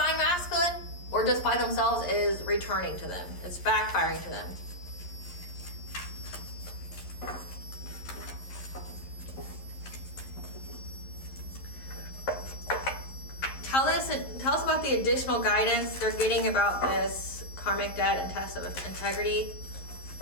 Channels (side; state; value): right; late; 11 ms